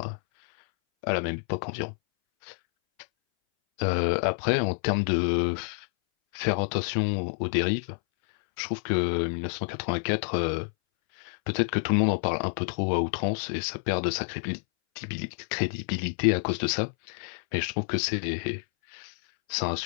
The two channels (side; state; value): right; silent; 59 dB below the other